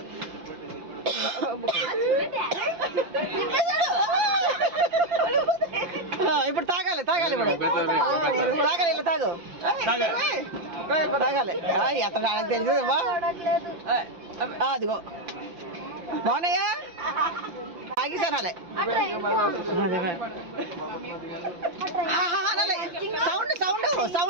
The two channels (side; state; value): left; late; 5.8 ms